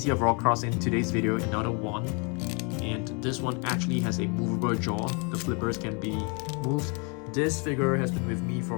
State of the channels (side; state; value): right; quieter; 33.5 dB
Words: of orcas in today's video. Another one. And this one actually has a movable jaw. The flippers can be moved. This figure has been with me